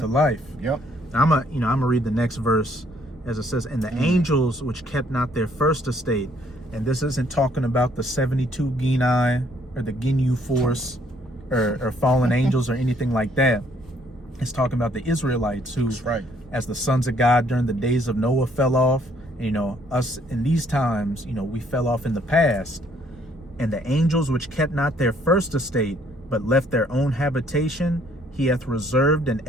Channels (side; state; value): both; normal; correlation 0.65